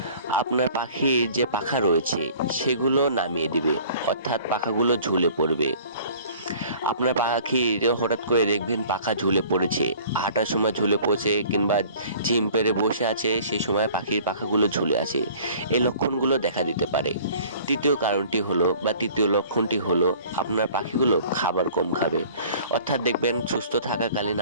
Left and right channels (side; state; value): both; inverted; correlation -0.49